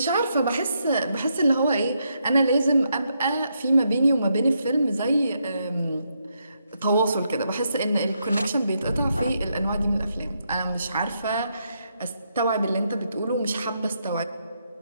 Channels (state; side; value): inverted; both; correlation -0.79